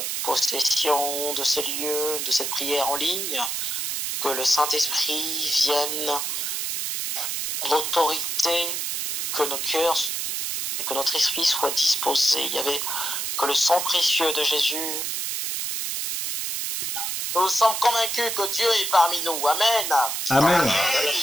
possession de ces lieux, de cette prière en ligne, que le Saint-Esprit vienne l'autorité, que nos cœurs et que notre esprit soit disposé. Il y avait que le sang précieux de Jésus. Nous sommes convaincus que Dieu est parmi nous. Amen. Amen.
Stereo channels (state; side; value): noise; right; hiss, 2 dB below the sound